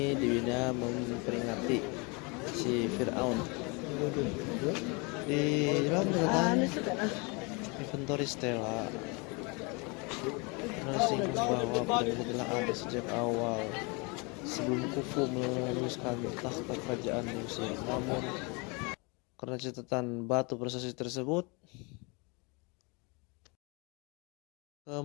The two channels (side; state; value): right; quieter; 30.0 dB